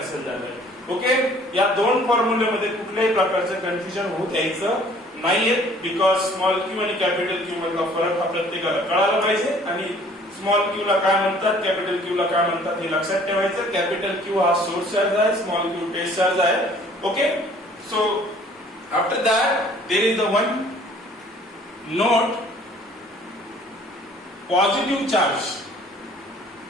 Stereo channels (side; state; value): both; normal; correlation 0.55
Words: झालाय. ओके, या दोन फॉर्म्युल्यामध्ये कुठल्याही प्रकारचं कन्फ्युजन होत यायचं नाहीये बिकॉज स्मॉल q आणि कॅपिटल Q मधला फरक हा प्रत्येकाला कळायला पाहिजे आणि स्मॉल q ला काय म्हणतात कॅपिटल Q ला काय म्हणतात हे लक्षात ठेवायचं. कॅपिटल Q हा सोर्स चार्ज आहे, स्मॉल q टेस्ट चार्ज आहे. Okay, so after that there is the one note positive charge